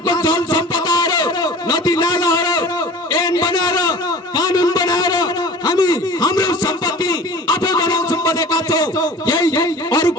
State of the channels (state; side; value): normal; both; correlation 0.41